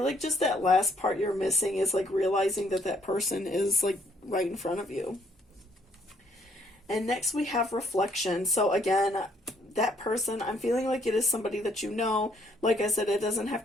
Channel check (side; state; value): both; normal; correlation 0.67